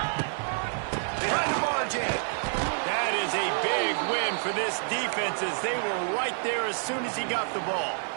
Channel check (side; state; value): left; silent; 59 dB below the other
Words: Trying to barge in. That is a big win for this defense as they were right there as soon as he got the ball.